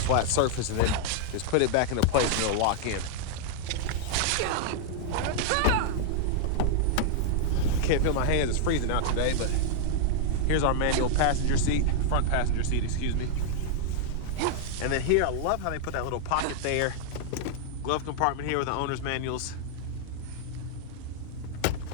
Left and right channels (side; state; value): both; different; correlation -0.01